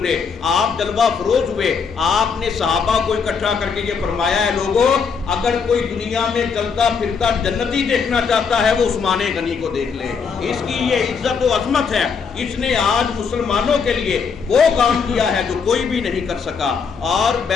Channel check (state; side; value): quieter; right; 5.8 dB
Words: آپ جلوہ فروز ہوئے، آپ نے صحابہ کو اکٹھا کر کے یہ فرمایا ہے، لوگوں اگر کوئی دنیا میں چلتا پھرتا جنتی دیکھنا چاہتا ہے وہ عثمان غنی کو دیکھ لے، اس کی یہ عزت و عظمت ہے، اس نے آج مسلمانوں کے لیے وہ کام کیا ہے جو کوئی بھی نہیں کر سکا۔ اور